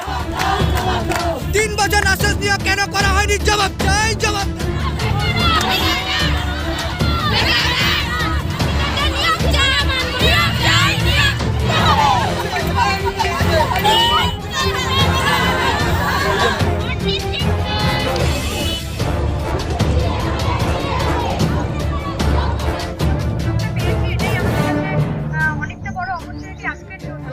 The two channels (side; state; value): both; identical; correlation 1.00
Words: 3 বছর আশ্বাস নিয়ে কেন করা হয়নি? জবাব চাই, জবাব।